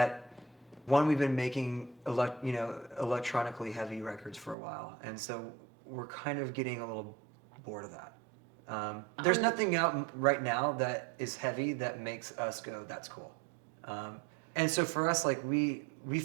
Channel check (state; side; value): drops out; left; at 4.5 s